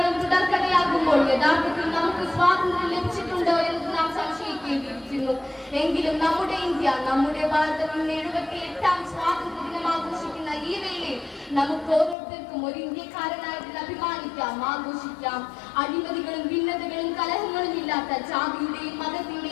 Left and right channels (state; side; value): drops out; right; at 12.2 s